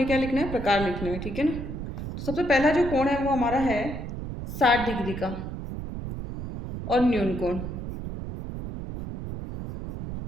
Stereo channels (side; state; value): right; noise; rumble, 7 dB below the sound